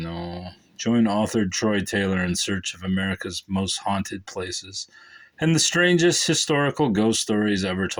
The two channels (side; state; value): both; identical; correlation 1.00